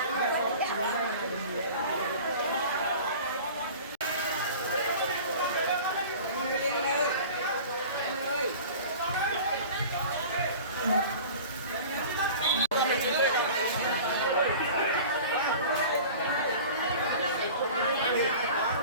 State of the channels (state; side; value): inverted; both; correlation -0.39